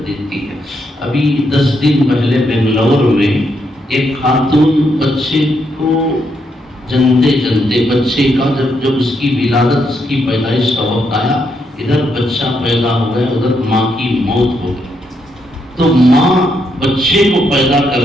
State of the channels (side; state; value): both; normal; correlation 0.78